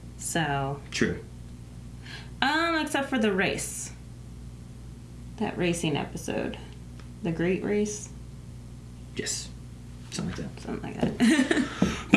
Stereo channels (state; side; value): identical; both; correlation 1.00